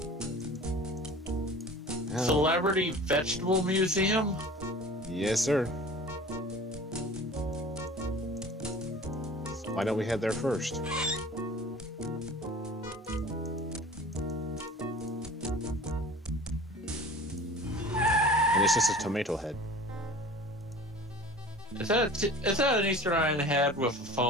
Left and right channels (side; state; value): both; normal; correlation 0.41